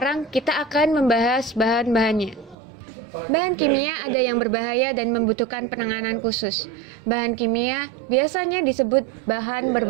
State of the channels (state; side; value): drops out; left; at 2.6 s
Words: kita akan membahas bahan-bahannya. Bahan kimia ada yang berbahaya dan membutuhkan penanganan khusus. Bahan kimia biasanya disebut bahan